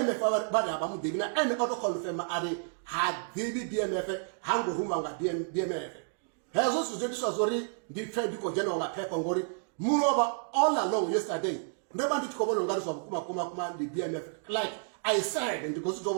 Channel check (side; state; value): left; silent; digital silence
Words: ba ya ba mu de na ene auto confirm are ha dibi BMF hango rumba nga BMF hezo sujetu sazori ndi trade ko jeno nga pepa ngori moreover all along yesterday ndeba ndi tikobolo ngari so kuma the BMF like I said and because to